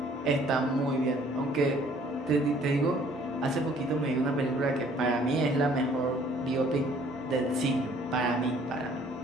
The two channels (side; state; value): both; normal; correlation 0.58